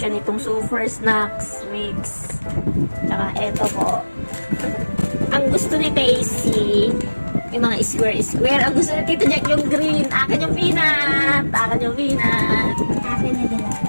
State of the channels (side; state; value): both; inverted; correlation -1.00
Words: nitong super snacks mix. Tsaka eto po. Ang gusto ni Daisy, yung mga square. Ang gusto ni Tito Jack yung green. Akin yung peanut. Akin yung peanut. Akin na dala.